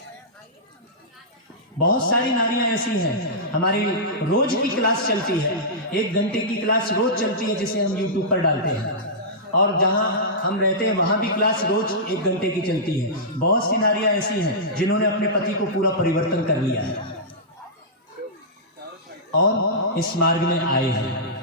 बहुत सारी नारियां ऐसी हैं, हमारी रोज की क्लास चलती है, 1 घंटे की क्लास रोज चलती है जिसे हम YouTube पर डालते हैं, और जहां हम रहते हैं वहां भी क्लास रोज 1 घंटे की चलती है। बहुत सी नारियां ऐसी हैं जिन्होंने अपने पति को पूरा परिवर्तन कर लिया है और इस मार्ग में आए हैं।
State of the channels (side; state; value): both; normal; correlation -0.16